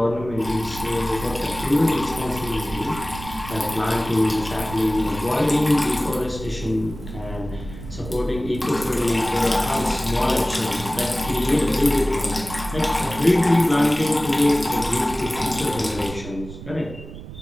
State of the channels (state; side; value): noise; right; rumble, 13 dB below the sound